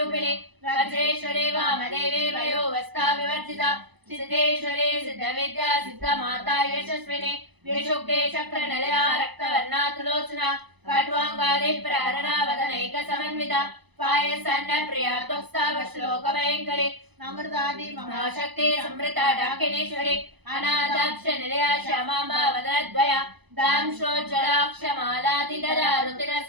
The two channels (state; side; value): late; left; 0.99 ms